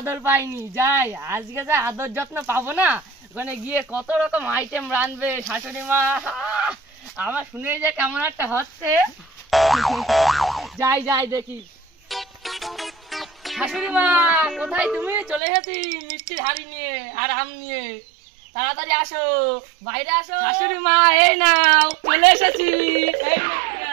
পাইনি, যাই আজকে যা আদর যত্ন পাবো না, ওখানে গিয়ে কত রকম আইটেম রাঁধবে শাশুড়ি মা। আমার শুনে যে কেমন একটা হচ্ছে, যাই যাই দেখি। শাশুড়ি মা কোথায় তুমি? চলে এসেছি মিষ্টির হাড়ি নিয়ে আর আম নিয়ে, তাড়াতাড়ি আসো, বাইরে আসো। শাশুড়ি মা এই নাও, চলে এসেছি, এই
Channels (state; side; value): drops out; left; at 15.4 s